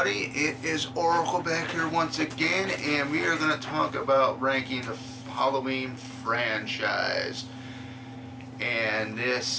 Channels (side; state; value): both; identical; correlation 1.00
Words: it is Oracle back here once again, and we are going to talk about ranking the Halloween franchise. And